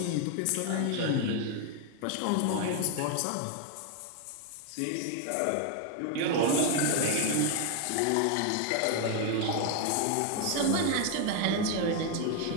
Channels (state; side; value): different; both; correlation 0.01